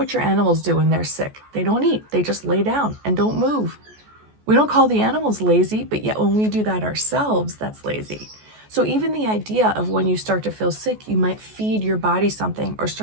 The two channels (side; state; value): left; late; 14 ms